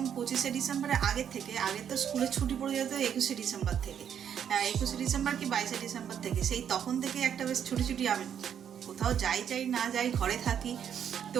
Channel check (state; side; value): quieter; left; 8.7 dB